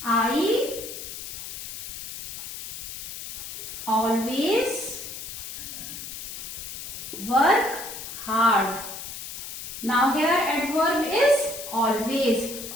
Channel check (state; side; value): noise; left; hiss, 9 dB below the sound